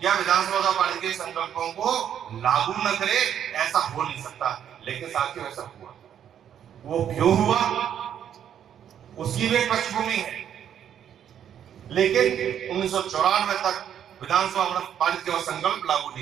या विधानसभा द्वारा पारित किए संकल्पों को लागू न करे, ऐसा हो नहीं सकता। लेकिन साथियों ऐसा हुआ। वो क्यों हुआ उसकी भी एक पृष्ठभूमि है। लेकिन 1994 तक विधानसभा पारित किया संकल्प लागू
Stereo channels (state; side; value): quieter; left; 9.4 dB